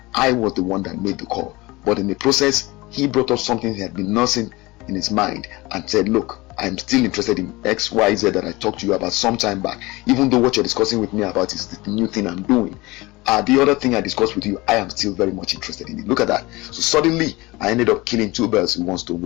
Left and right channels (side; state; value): right; quieter; 21.9 dB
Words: I was the one that made the call, but in the process he brought up something he had been nursing in his mind and said, look, I'm still interested in XYZ that I talked to you about some time back, even though what you're discussing with me about is the new thing I'm doing. The other thing I discussed with you, I am still very much interested in it. Look at that. So suddenly I ended up killing two birds with one stone